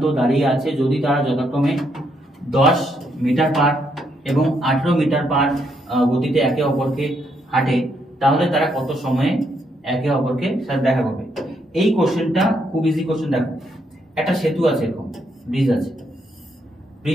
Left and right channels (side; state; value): both; normal; correlation 0.76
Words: দাঁড়িয়ে আছে, যদি তারা যথাক্রমে 10 মিটার পার এবং 18 মিটার পার গতিতে একে অপরকে হাঁটে, তাহলে তারা কত সময়ে একে অপরকে সাথে দেখা করবে। এই কোশ্চেনটা খুব ইজি কোশ্চেন। দেখো একটা সেতু আছে, এরকম ব্রিজ আছে,